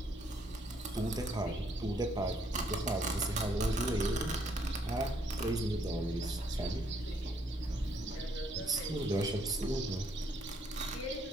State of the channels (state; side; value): normal; both; correlation 0.69